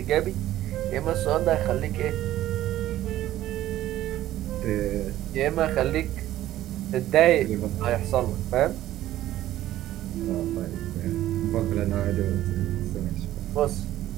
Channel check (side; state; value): left; quieter; 13.9 dB